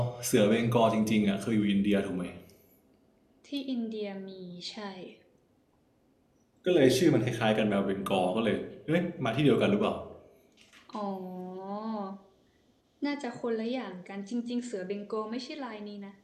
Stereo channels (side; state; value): both; identical; correlation 1.00